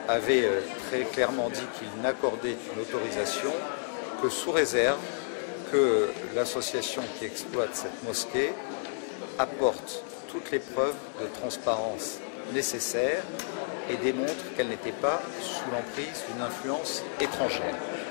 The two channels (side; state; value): right; silent; digital silence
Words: avait très clairement dit qu'il n'accordait une autorisation que sous réserve que l'association qui exploite cette mosquée apporte toutes les preuves de transparence nécessaires et démontre qu'elle n'était pas sous l'emprise d'une influence étrangère.